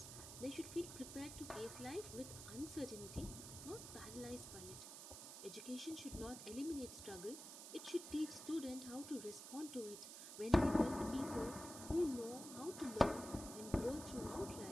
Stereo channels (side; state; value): right; noise; hiss, 10 dB below the sound